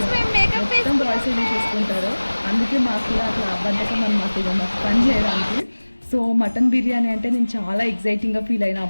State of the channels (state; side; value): inverted; both; correlation -1.00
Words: మొత్తం బాయ్సే చూసుకుంటారు. అందుకే మాకు కూడా అట్లా బద్ధకం అనమాట ఇక మాకు పని చేయడానికి. సో మటన్ బిర్యానీ అంటే నేను చాలా ఎగ్జైటింగ్గా ఫీల్ అయినా,